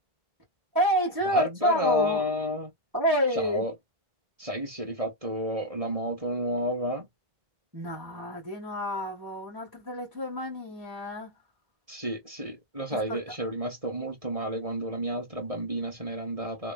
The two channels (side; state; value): left; late; 1.7 ms